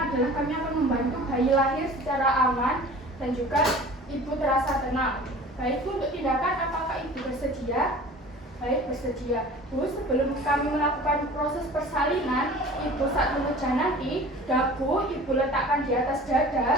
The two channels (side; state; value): both; normal; correlation 0.42